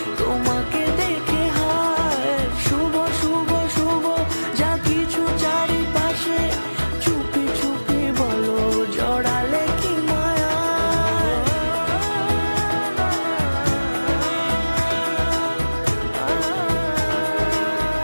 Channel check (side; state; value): both; inverted; correlation -1.00